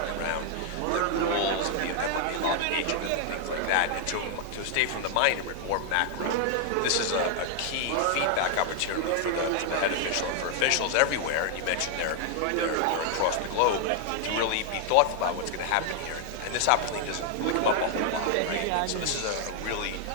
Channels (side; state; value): both; different; correlation 0.00